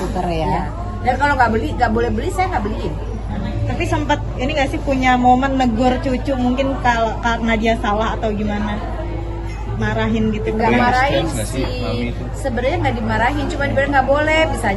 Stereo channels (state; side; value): identical; both; correlation 1.00